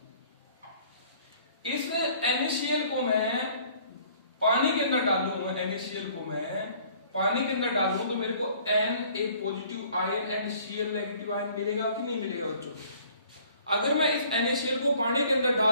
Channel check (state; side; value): inverted; both; correlation -0.55